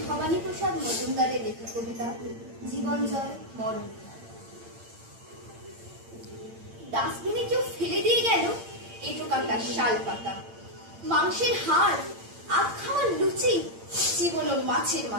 ভবানী প্রসাদ মজুমদারের লেখা কবিতা জীবন জয় মরণ। ডাস্টবিনে কেউ ফেলে দিয়ে গেল এঁটো কাটা শাল পাতা, মাংসের হাড়, আধ খাওয়া লুচি, জীবন মাছের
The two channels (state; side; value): late; left; 8.8 ms